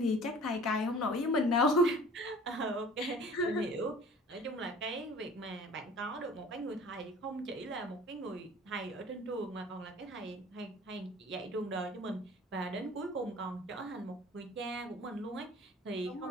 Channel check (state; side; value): normal; both; correlation 0.47